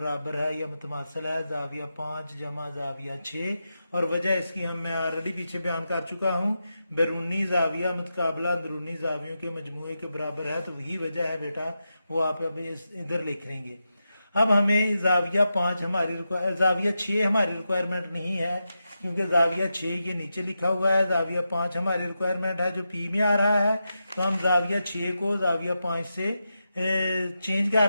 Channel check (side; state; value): both; inverted; correlation -0.89